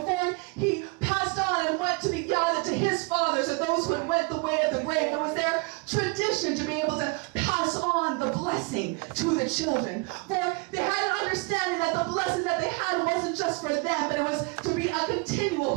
he passed on and went to be gathered to his fathers or those who had went the way of the grave. It was their tradition to be able to pass on the blessing to the children. For they had an understanding that the blessing that they had wasn't just for them, but it was to be a continual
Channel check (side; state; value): left; quieter; 28.9 dB